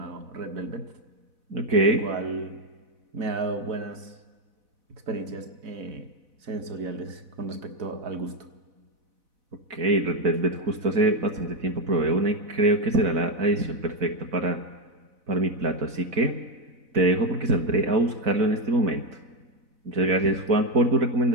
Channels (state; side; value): late; left; 4.0 ms